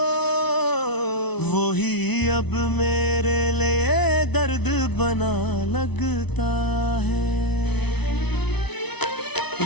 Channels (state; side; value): late; right; 0.99 ms